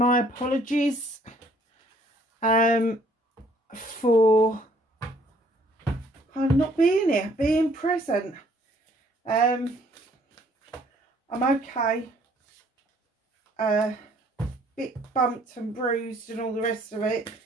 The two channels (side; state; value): both; normal; correlation 0.62